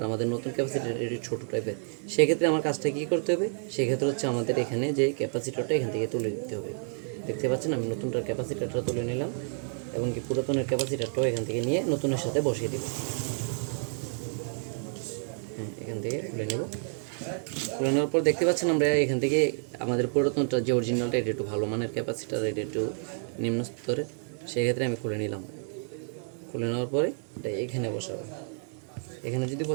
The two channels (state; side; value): silent; left; 58 dB below the other